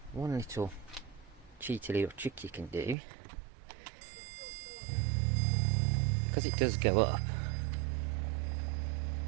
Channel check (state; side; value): drops out; left; at 3.0 s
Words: one little cheeky little trick you can do, because it does go up,